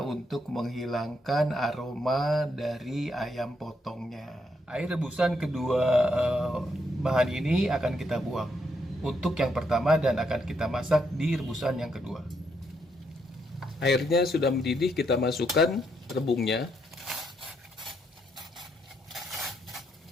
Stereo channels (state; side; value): normal; both; correlation 0.77